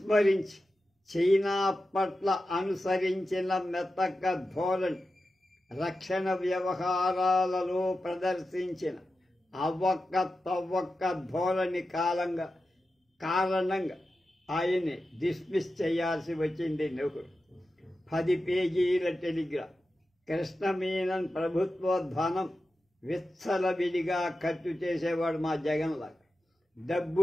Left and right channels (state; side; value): normal; both; correlation 0.92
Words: చైనా పట్ల అనుసరించిన మెతక ధోరణి, రక్షణ వ్యవహారాలలో ప్రదర్శించిన అవ్వక్క తవ్వక్క ధోరణి కారణంగా ఆయన్ని డిస్మిస్ చేయాల్సి వచ్చింది నెహ్రూ. 10 పేజీల టెలిగ్రామ్. కృష్ణ మీనన్ ప్రభుత్వ ధనం విచ్చలవిడిగా ఖర్చు చేసేవాడు మా జగన్లాగా.